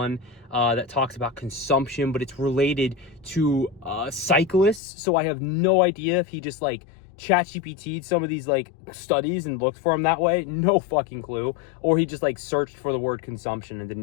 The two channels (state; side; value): drops out; right; at 4.8 s